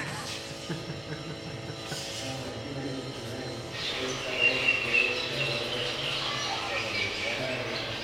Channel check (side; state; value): right; noise; hum, 29 dB below the sound